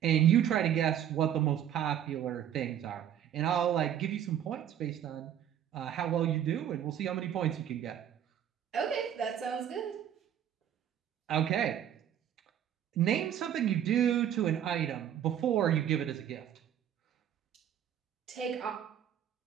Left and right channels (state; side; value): quieter; left; 10.0 dB